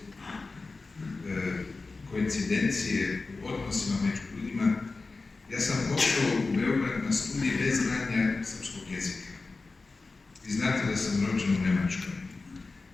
koincidencije u odnosima među ljudima. Ja sam pošao u Beograd na studij bez znanja srpskog jezika. Vi znate da sam rođen u Njemačkoj.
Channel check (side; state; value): right; quieter; 3.8 dB